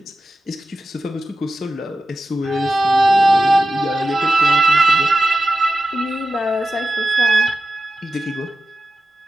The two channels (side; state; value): both; normal; correlation 0.93